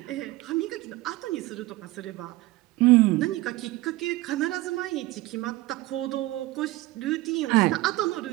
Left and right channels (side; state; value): left; quieter; 18.8 dB